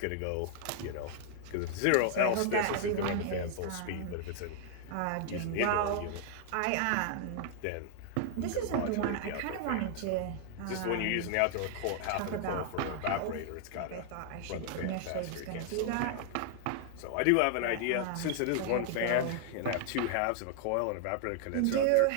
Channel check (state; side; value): different; both; correlation 0.00